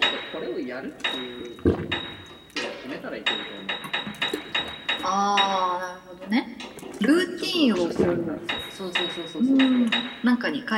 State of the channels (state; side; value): identical; both; correlation 1.00